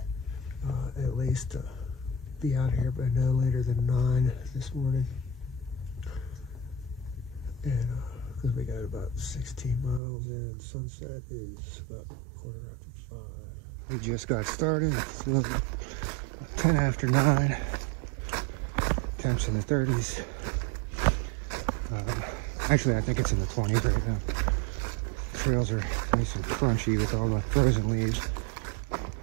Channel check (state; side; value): drops out; left; at 10.0 s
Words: at least be out here by no later than 9 this morning, and because we got about 16 miles in, sunset is about 5:15. We just got started. It's a little 10 after 9. Temps in the 30s. Actually, I think it's in the 20s right now. The trails are nice and crunchy with all the frozen leaves.